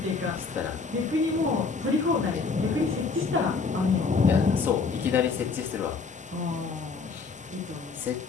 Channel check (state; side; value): quieter; right; 4.6 dB